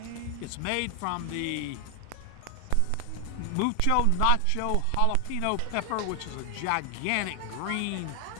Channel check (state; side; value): different; both; correlation 0.00